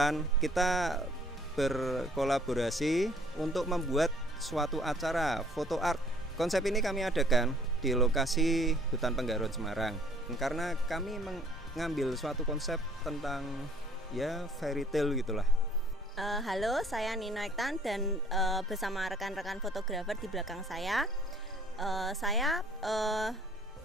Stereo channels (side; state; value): both; normal; correlation 0.57